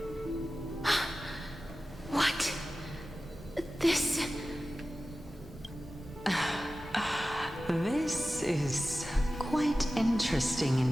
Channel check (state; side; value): normal; both; correlation 0.95